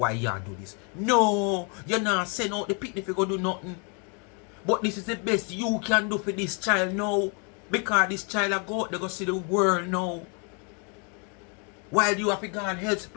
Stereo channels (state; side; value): quieter; right; 37.0 dB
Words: you do this? No, you're not send out the picnic if you go do nothing. But this is the best you can do for this child now. Because this child will go out there go see the world now. While you have to go and help the